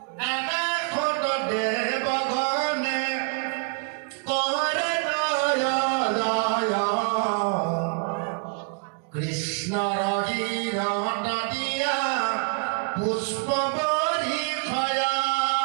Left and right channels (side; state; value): left; quieter; 38.7 dB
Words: আকাশত দেবগণে করে জয় কৃষ্ণ রহিরত দিয়া পুষ্প বরিখয়া